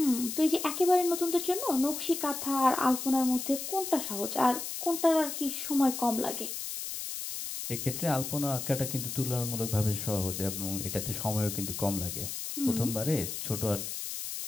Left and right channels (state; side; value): noise; left; hiss, 6 dB below the sound